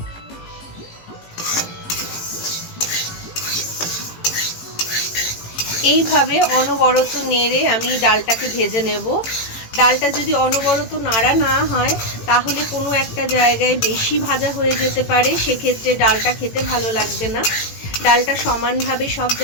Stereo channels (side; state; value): right; late; 18 ms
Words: এইভাবে অনবরত নেড়ে আমি ডালটাকে ভেজে নেব। ডালটা যদি অনবরত নাড়া না হয় তাহলে কোনো একটা জায়গায় বেশি ভাজা হয়ে যেতে পারে, সেক্ষেত্রে ডালটা খেতে ভালো লাগবে না। ডালটা সমানভাবে সব